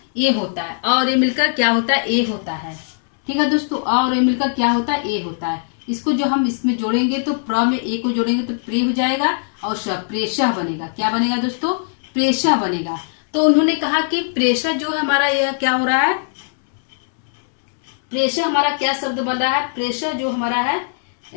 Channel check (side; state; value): right; silent; digital silence